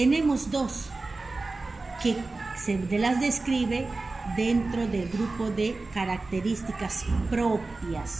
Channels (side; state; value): left; quieter; 3.5 dB